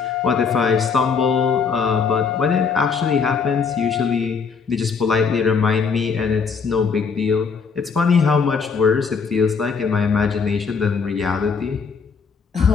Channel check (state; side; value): quieter; right; 5.6 dB